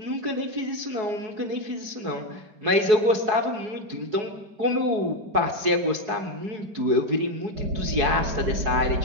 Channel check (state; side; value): late; left; 4.7 ms